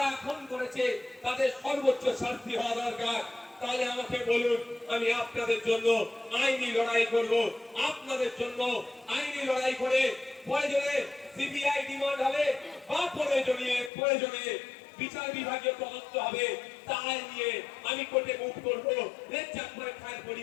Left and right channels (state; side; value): drops out; right; at 13.9 s